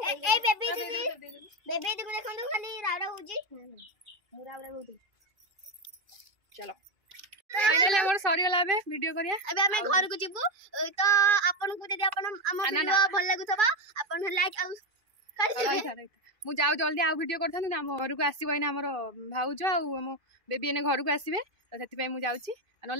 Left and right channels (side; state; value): left; late; 2.3 ms